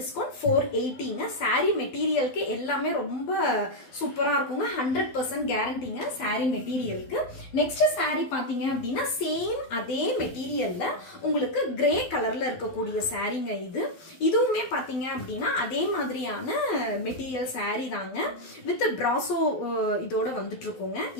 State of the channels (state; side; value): late; right; 12 ms